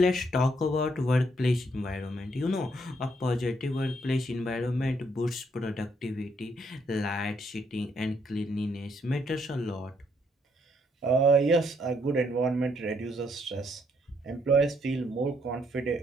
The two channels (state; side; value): normal; both; correlation 0.72